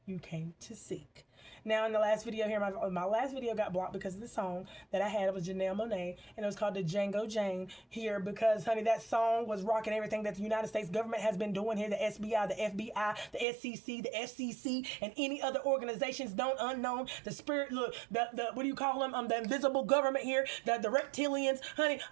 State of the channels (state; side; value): drops out; left; at 13.5 s